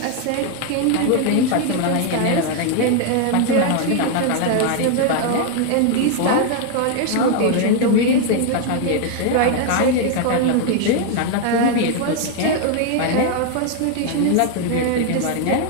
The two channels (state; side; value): different; both; correlation 0.00